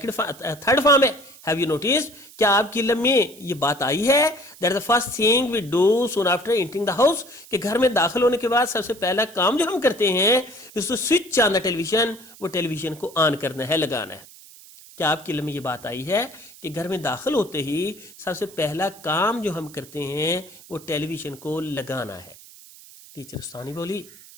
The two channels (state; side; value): noise; right; hiss, 21 dB below the sound